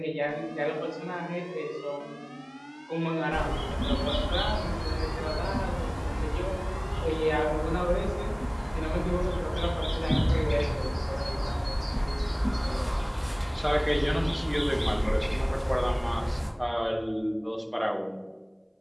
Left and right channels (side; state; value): both; identical; correlation 1.00